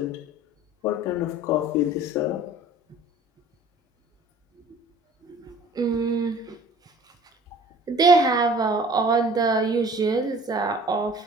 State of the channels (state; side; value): normal; both; correlation 0.48